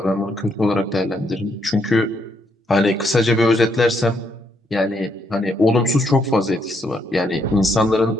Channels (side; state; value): both; normal; correlation 0.75